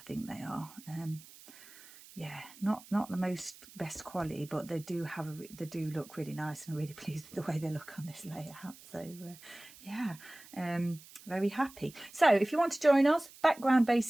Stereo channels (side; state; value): right; noise; hiss, 20 dB below the sound